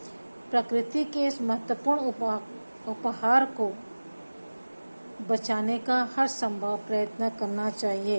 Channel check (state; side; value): inverted; both; correlation -1.00